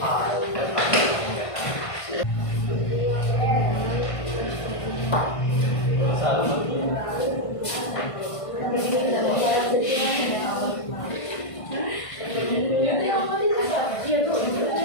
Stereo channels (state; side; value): late; right; 1.5 ms